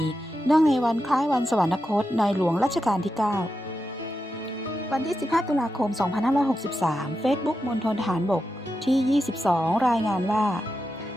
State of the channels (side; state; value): both; normal; correlation 0.88